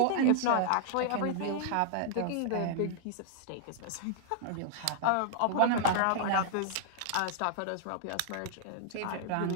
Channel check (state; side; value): different; both; correlation -0.01